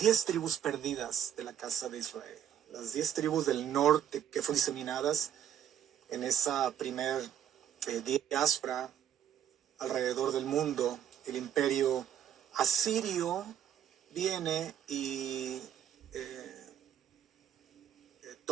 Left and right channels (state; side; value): quieter; left; 9.8 dB